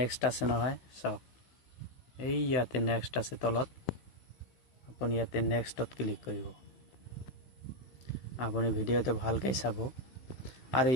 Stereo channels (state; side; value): late; right; 16 ms